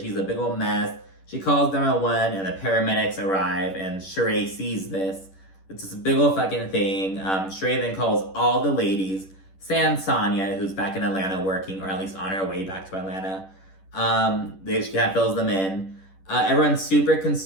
a big old mess. She calls 911, and the paramedics arrive, and Sheree sees this. It's this big old fucking thing. Sheree then calls all the ladies, sans Sonya, who's back in Atlanta working, or at least on her way back to Atlanta. She kind of fills them in. Everyone's super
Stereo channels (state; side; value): late; right; 10 ms